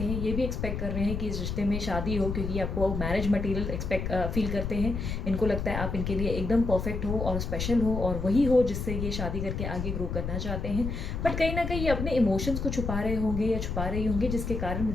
हैं, ये भी एक्सपेक्ट कर रहे हैं कि इस रिश्ते में शादी हो, क्योंकि आपको मैरिज मटेरियल फील करते हैं। इनको लगता है आप इनके लिए एकदम परफेक्ट हो और स्पेशल हो और वही हो जिससे ये शादी करके आगे ग्रो करना चाहते हैं। बट कहीं ना कहीं ये अपने इमोशंस को छुपा रहे होंगे या छुपा रही होंगी, जिसके कारण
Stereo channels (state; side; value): noise; left; rumble, 3 dB below the sound